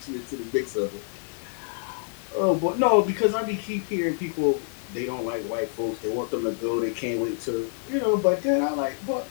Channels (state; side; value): silent; right; digital silence